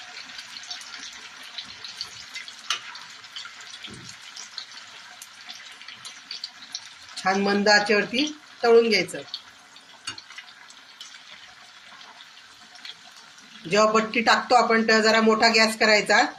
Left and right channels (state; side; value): identical; both; correlation 1.00